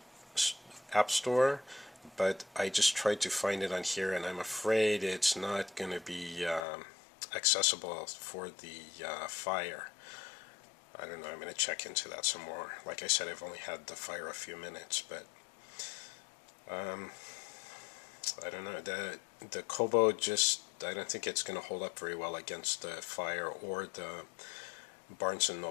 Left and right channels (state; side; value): drops out; right; at 6.6 s